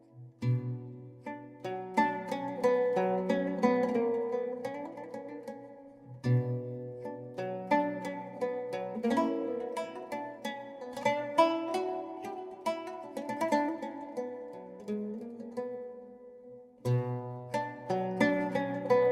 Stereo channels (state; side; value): identical; both; correlation 1.00